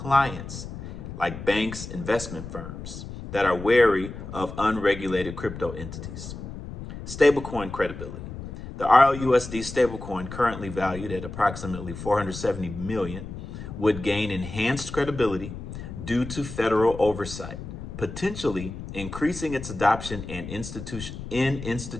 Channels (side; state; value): left; noise; rumble, 10 dB below the sound